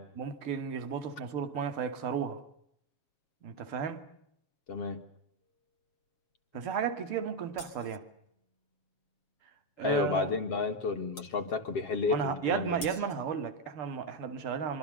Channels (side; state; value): right; late; 7.2 ms